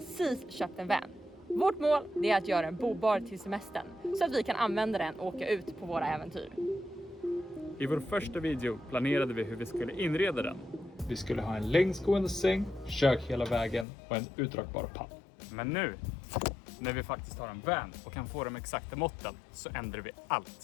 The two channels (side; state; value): right; drops out; at 13.9 s